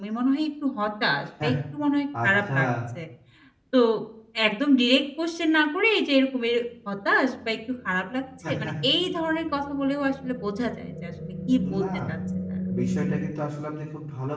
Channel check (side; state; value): both; identical; correlation 1.00